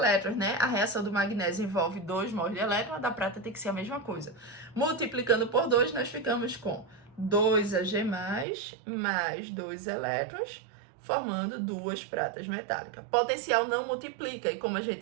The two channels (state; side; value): drops out; left; at 8.5 s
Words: né? A reação do magnésio envolve 2 mols de elétron, a da prata tem que ser a mesma coisa. Multiplicando por 2, nós ficamos com 2Ag+, mais 2 elétrons, formando 2 pratas metálicas. Potencial não multiplica, e como a